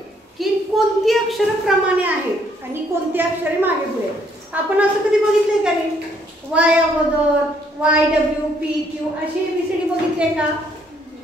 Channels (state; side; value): normal; both; correlation 0.68